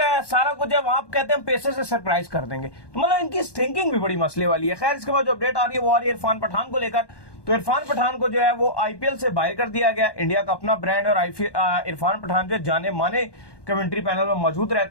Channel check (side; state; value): right; late; 1.1 ms